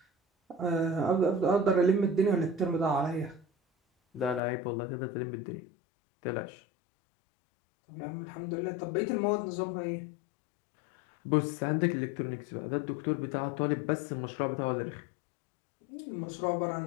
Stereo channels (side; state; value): right; drops out; at 4.4 s